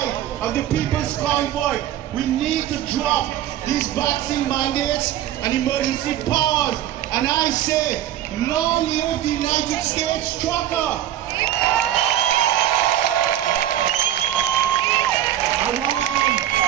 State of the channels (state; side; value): quieter; left; 12.2 dB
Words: of the people's convoy. We need to drop these vaccine mandates and emergency powers. And I say, long live the United States trucker! I